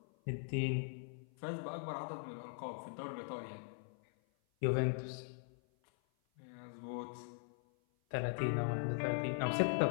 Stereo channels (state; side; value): silent; right; 51 dB below the other